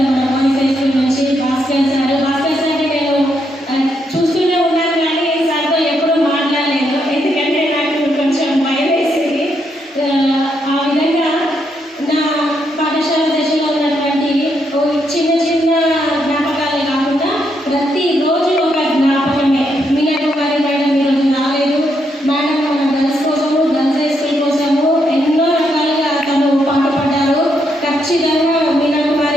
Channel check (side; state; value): both; normal; correlation 0.78